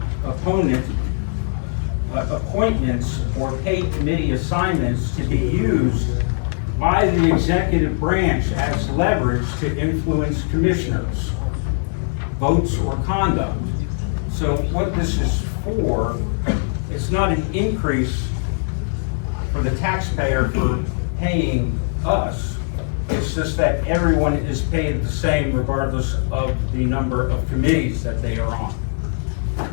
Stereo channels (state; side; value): silent; right; digital silence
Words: appointments or paid committee assignments to be used by the executive branch as leverage to influence commissioners' votes or conduct. So what this is for, it's not an increase for the taxpayer for paying us. It's just that everyone is paid the same regardless of the number of committees that they are on.